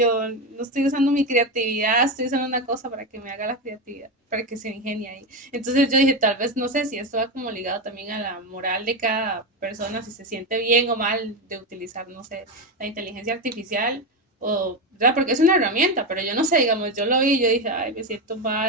no estoy usando mi creatividad, estoy usando una cosa para que me haga la creatividad, para que se ingenie ahí. Entonces yo dije, tal vez, no sé si esto va como ligado también a la moral de cada persona, si se siente bien o mal de utilizar, no sé, la inteligencia artificial, o, ¿verdad? Porque es una herramienta, pero yo no sé, digamos, yo lo vi y yo dije, ay, me siento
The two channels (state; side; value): normal; both; correlation 0.14